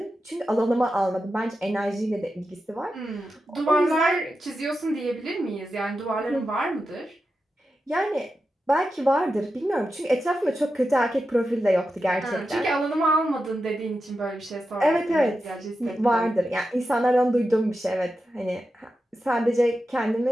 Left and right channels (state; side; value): normal; both; correlation 0.90